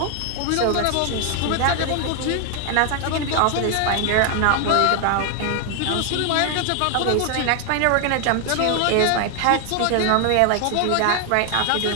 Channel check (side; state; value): both; different; correlation 0.00